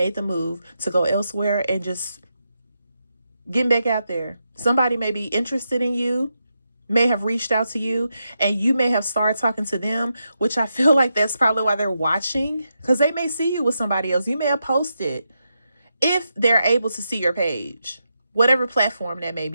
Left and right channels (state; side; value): inverted; both; correlation -0.85